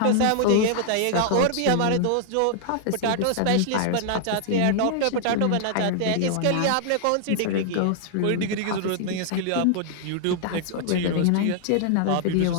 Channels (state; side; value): different; both; correlation -0.01